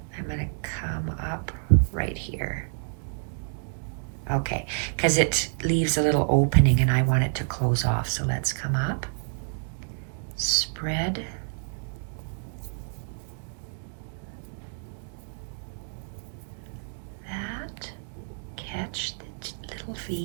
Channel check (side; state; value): left; silent; digital silence